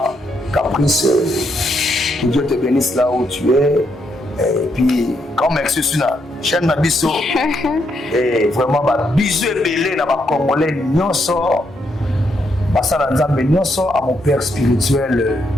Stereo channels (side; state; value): both; normal; correlation 0.77